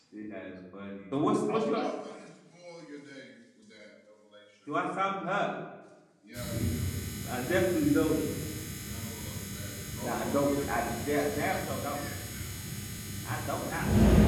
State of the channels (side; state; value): both; identical; correlation 1.00